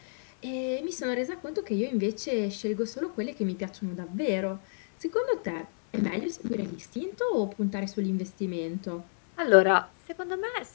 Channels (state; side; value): silent; right; 58 dB below the other